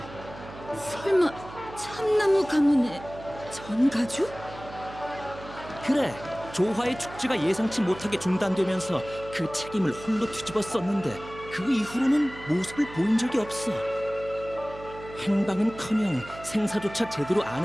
설마 참나무 가문의 전가주? 그래, 조화의 축제가 예상치 못하게 중단되면서 그 책임을 홀로 뒤집어 썼는데 그 이후로는 모습을 보인 적이 없어. 행방은커녕 생사조차 제대로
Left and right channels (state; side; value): noise; right; hum, 15 dB below the sound